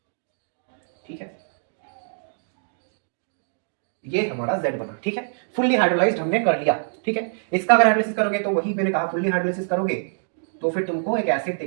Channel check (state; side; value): silent; left; digital silence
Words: ठीक है, ये हमारा Z बना, ठीक है, फुल्ली हाइड्रोलाइज्ड हमने कर लिया, ठीक है। इसका अगर हाइड्रोलिसिस करोगे तो वही मैंने कहा, फुल्ली हाइड्रोलिसिस करोगे तो फिर तुमको एक एसिड